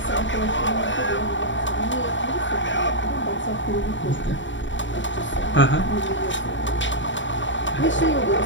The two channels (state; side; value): late; right; 0.54 ms